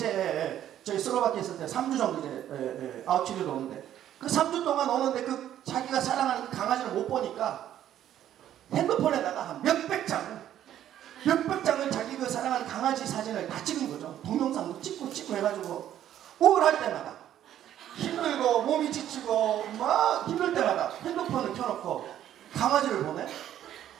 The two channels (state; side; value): quieter; left; 11.3 dB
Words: 저희 슬로바키아 있을 때 3주 정도 이제 아웃치료도 오는데 그 3주 동안 오는데 그 자기가 사랑하는 그 강아지를 못 보니까 핸드폰에다가 한 몇백 장을 자기 그 사랑하는 강아지 사진을 다 찍은 거죠. 동영상도 찍고 해가지고 우울할 때마다 힘들고 몸이 지치고 막 힘들 때마다 핸드폰을 켜놓고 강아지를 보내.